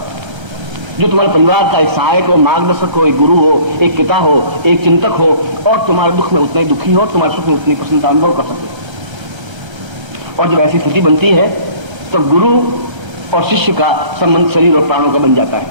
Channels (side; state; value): left; late; 1.3 ms